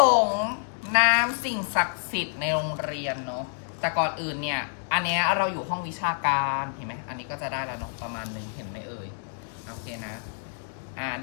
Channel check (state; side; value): silent; right; digital silence